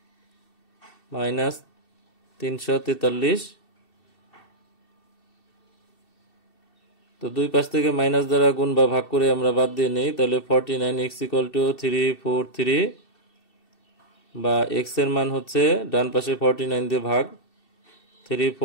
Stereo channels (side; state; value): right; late; 2.7 ms